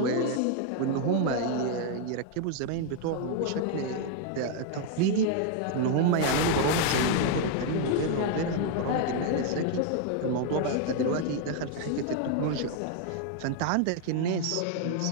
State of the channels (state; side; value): different; both; correlation 0.00